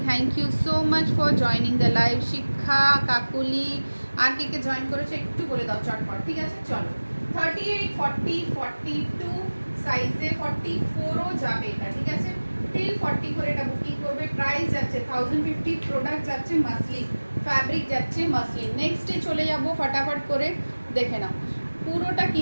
thank you so much for joining the live. Shiksha, Kakuli, R K K join করেছে একটু বলে দাও চটপট, ঠিক আছে। চলো 38, 40, 42 সাইজে 44ও যাবে এটা, ঠিক আছে। টিল 40 করে এটা বুকিং করবে। প্রাইস যাচ্ছে 1050, প্রোডাক্ট যাচ্ছে মাসলিন, ফ্যাব্রিক যাচ্ছে মাসলিন। নেক্সটে চলে যাব, ফটাফট করে দেখে নাও। পুরোটা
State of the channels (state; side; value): inverted; both; correlation -1.00